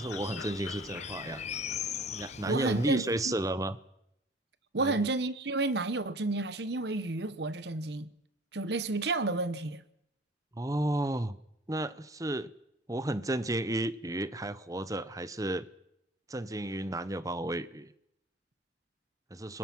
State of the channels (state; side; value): normal; both; correlation 0.47